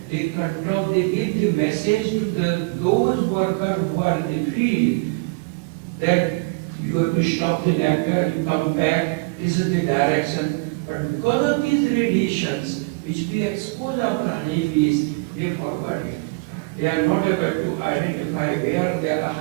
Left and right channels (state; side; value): quieter; left; 28.7 dB